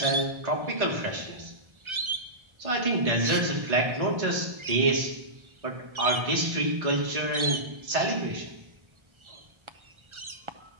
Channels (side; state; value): left; late; 1.4 ms